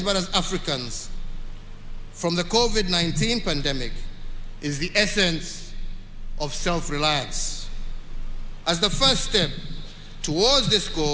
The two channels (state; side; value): identical; both; correlation 1.00